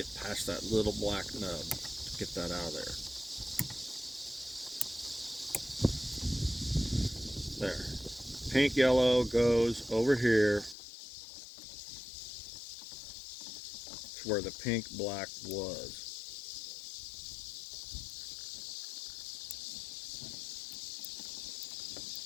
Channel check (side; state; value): right; drops out; at 10.8 s